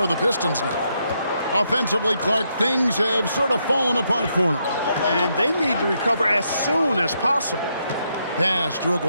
the Pistons now. Offensively, Clark, things have sort of fallen apart for them. And they need to recover as soon as possible. Pass to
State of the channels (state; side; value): inverted; both; correlation -0.78